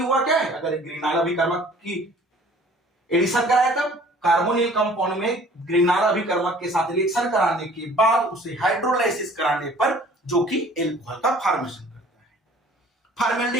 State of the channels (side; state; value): both; normal; correlation 0.52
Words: क्या है, अगर ग्रिग्नार्ड अभिकर्मक की एडिशन कराया तब कार्बोनिल कंपाउंड में ग्रिग्नार्ड अभिकर्मक के साथ रिएक्शन कराने के बाद उसे हाइड्रोलाइसिस कराने पर जो कि एल्कोहल का फॉर्मेशन करता है।